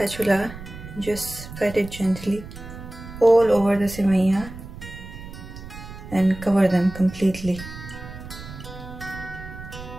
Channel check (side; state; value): right; noise; rumble, 13 dB below the sound